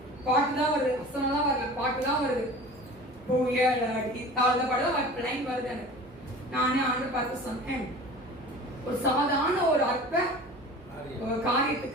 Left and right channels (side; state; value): both; normal; correlation 0.40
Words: பாட்டு தான் வருது, வசனம் தான் வருது, பாட்டு தான் வருது. தாழ்ந்த பாட்டு லைன் வருது எனக்கு. நானே ஆண்டு பார்த்து சொன்னேன், ஒரு சாதாரண ஒரு அற்ப